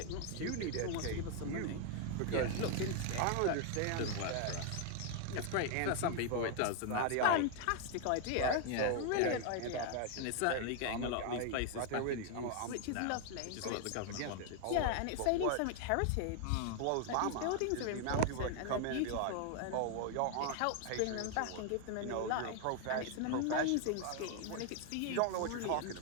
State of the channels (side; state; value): both; different; correlation 0.00